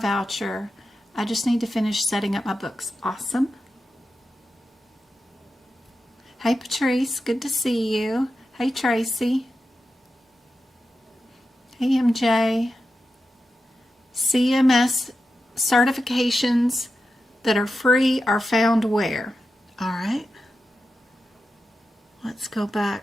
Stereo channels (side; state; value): both; normal; correlation 0.90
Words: I just need to finish setting up my books. Awesome. Hey, Patrice. Good to see you. Hey, Tracy. Hey, MJ. CMS certifications that are free are found where? All right. Let's go